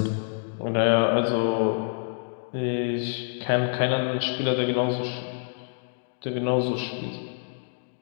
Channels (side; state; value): right; silent; digital silence